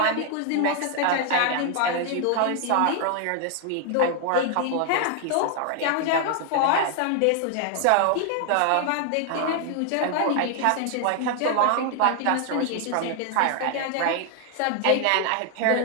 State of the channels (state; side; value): different; both; correlation 0.00